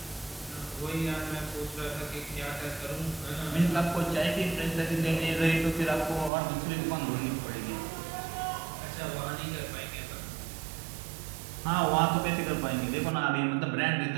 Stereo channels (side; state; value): left; drops out; at 6.3 s